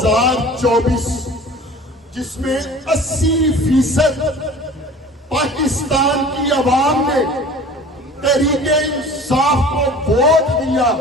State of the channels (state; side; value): normal; both; correlation 0.43